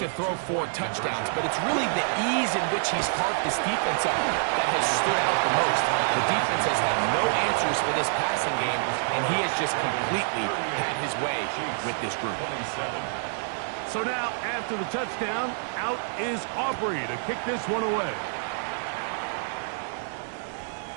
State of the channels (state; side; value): silent; left; digital silence